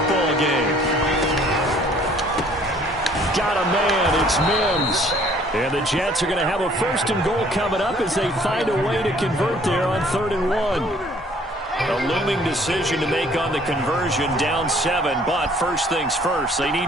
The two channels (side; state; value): both; normal; correlation 0.58